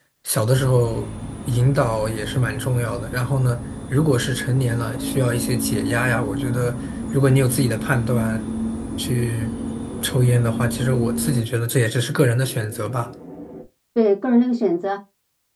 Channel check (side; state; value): both; identical; correlation 1.00